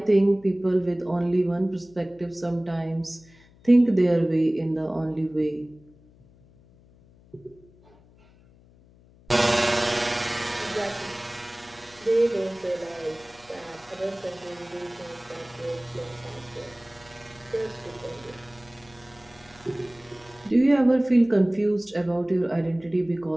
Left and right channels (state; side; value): noise; left; hum, 27 dB below the sound